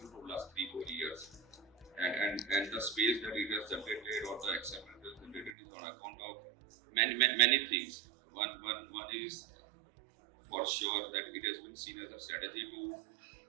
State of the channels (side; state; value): left; drops out; at 5.5 s